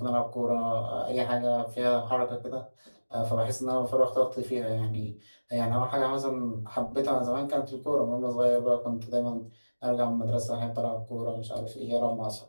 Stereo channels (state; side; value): inverted; both; correlation -1.00